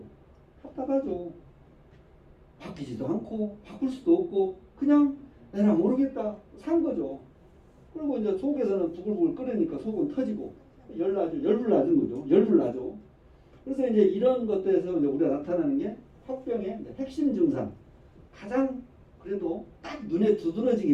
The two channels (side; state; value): both; identical; correlation 1.00